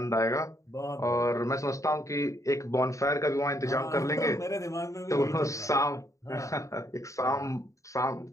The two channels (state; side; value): late; right; 0.15 ms